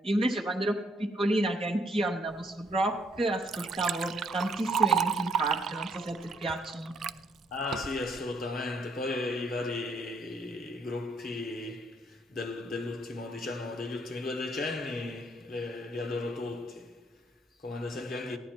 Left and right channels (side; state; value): both; normal; correlation 0.68